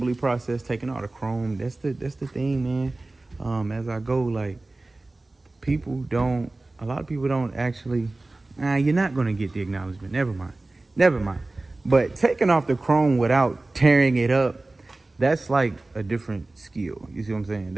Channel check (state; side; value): quieter; left; 3.0 dB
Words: process, taking all the chrome. That's the thing, man. As I go, like, a lot of people don't actually, you're not gonna get the acknowledgement. Never mind. But taking off the chrome without tearing it up, that's like a different skill. You see what I'm saying?